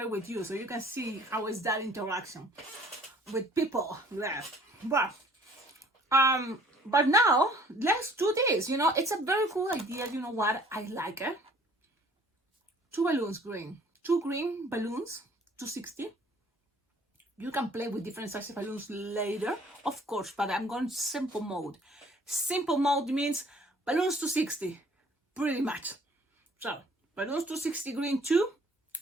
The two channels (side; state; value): both; normal; correlation 0.55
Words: it with you so you can see how is that interaction with people there. But now let's do this. It's a very cool idea. You know what? I like it. 2 balloons green. 2 green balloons, 260. You can play with different sizes of balloons later, of course, but I'm going simple mode. Simple mode means balloons 260, pretty much. So balloons 260 green 2.